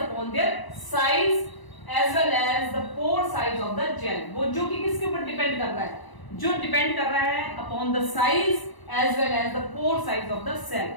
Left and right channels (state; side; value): late; right; 1.0 ms